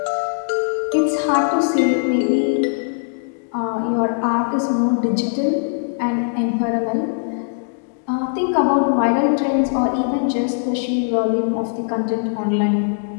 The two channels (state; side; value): silent; right; digital silence